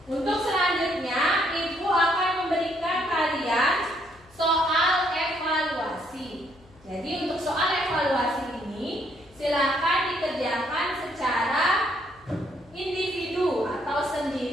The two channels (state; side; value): noise; left; hum, 27 dB below the sound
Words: Untuk selanjutnya, Ibu akan memberikan kalian soal evaluasi. Jadi untuk soal evaluasi ini silakan dikerjakan secara individu atau